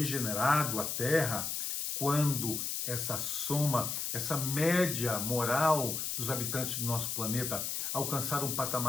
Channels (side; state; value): left; noise; hiss, 2 dB below the sound